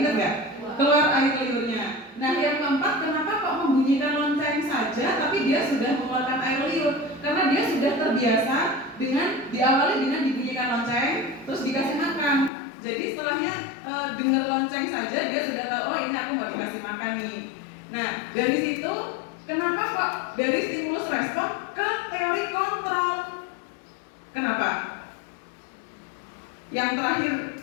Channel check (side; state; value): right; drops out; at 12.5 s